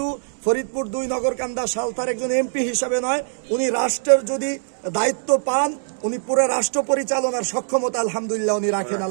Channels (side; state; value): left; silent; digital silence